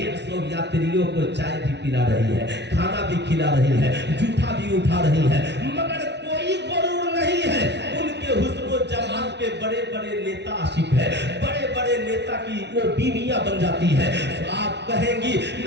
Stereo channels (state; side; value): late; left; 0.50 ms